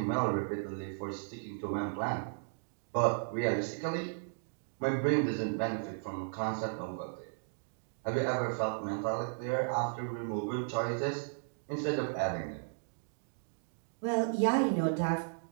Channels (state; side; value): silent; left; digital silence